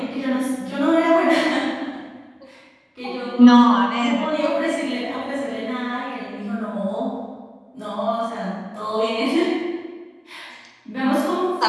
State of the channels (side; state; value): both; identical; correlation 1.00